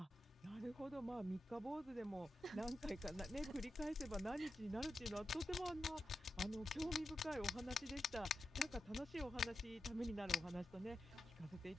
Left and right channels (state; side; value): normal; both; correlation 0.90